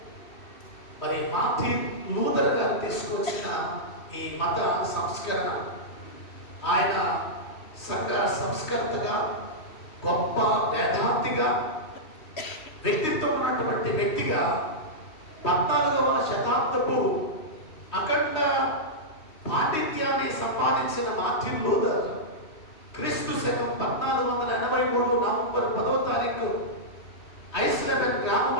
మరి మార్టిన్ లూథర్ గారు ఈ మత సంస్కరణ. ఆయన సంఘ సంస్కర్తగా, గొప్ప వేదాంతిగా, వ్యక్తిత్వం ఉన్నటువంటి వ్యక్తిగా 14వ శతాబ్దపు అఖండ పాండిత్యాన్ని సంపాదించిన మార్టిన్ లూథర్ క్రీస్తు శకం 1483 నవంబర్ 10వ తారీఖు ఐస్లెబెన్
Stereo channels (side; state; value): right; late; 3.2 ms